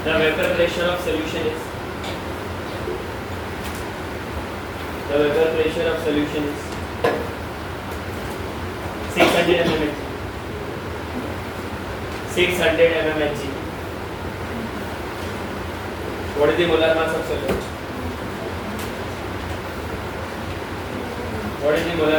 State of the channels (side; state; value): both; identical; correlation 1.00